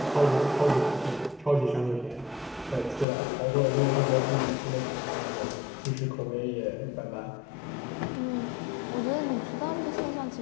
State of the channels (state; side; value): drops out; right; at 3.1 s